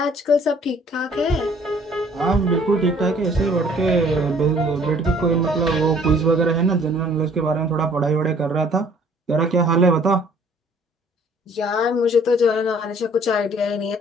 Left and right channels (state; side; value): normal; both; correlation 0.57